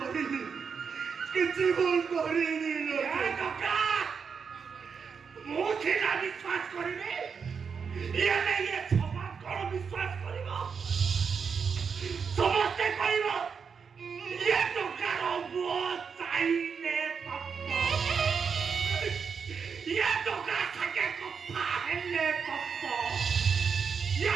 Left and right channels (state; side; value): quieter; left; 6.1 dB